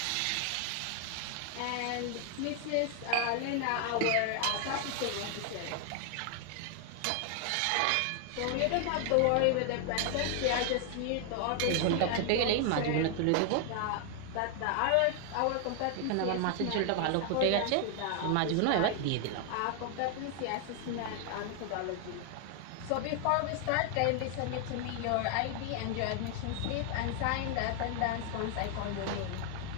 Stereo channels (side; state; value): both; different; correlation 0.00